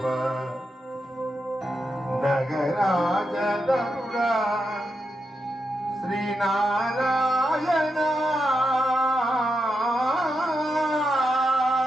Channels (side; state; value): both; normal; correlation 0.86